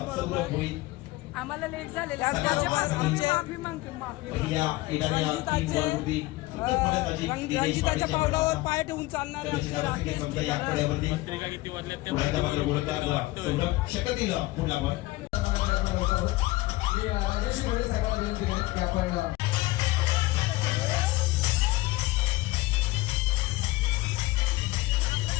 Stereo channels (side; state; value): right; quieter; 19.5 dB